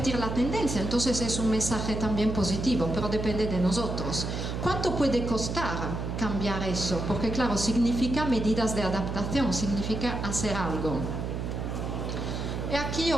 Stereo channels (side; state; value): right; noise; hum, 3 dB below the sound